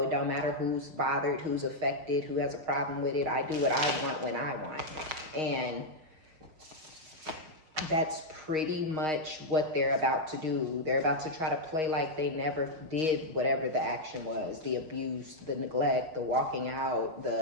it don't matter who's bothered, who's affected, who has a problem with it. I do what I want when I want. And that's pretty much what they're about to do. They're about to try to play like they never did whatever the action was. The abuse, the neglect, the walking out,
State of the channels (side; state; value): left; late; 6.4 ms